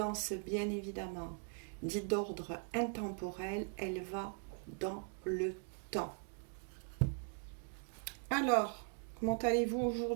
bien évidemment dite d'ordre intemporel, elle va dans le temps. Alors, comment allez-vous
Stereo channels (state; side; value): silent; left; 51 dB below the other